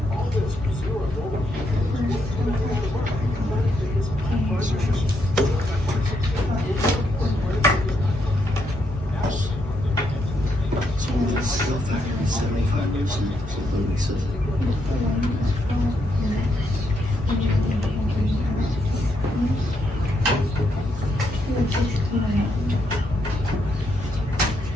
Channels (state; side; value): normal; both; correlation 0.78